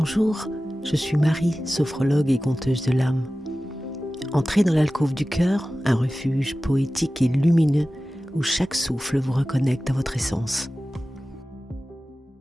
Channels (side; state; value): both; normal; correlation 0.96